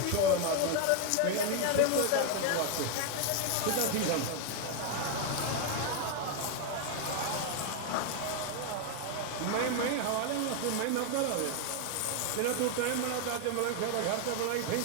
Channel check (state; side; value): different; both; correlation 0.01